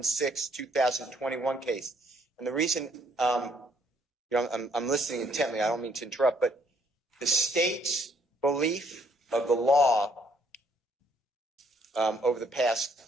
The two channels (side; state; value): both; normal; correlation 0.67